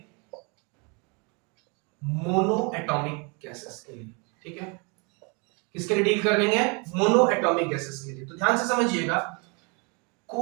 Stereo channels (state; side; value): quieter; left; 32.4 dB